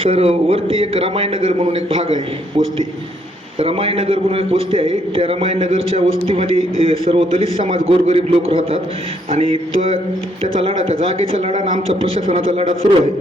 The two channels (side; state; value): both; normal; correlation 0.70